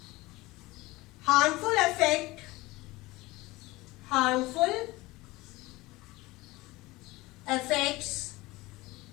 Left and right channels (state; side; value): quieter; right; 20.7 dB